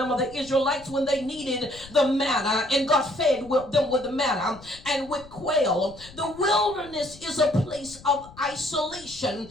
the Israelites when they needed the manna and God fed them with the manna and with quail. The wilderness is a place of isolation.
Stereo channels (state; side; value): noise; left; rumble, 20 dB below the sound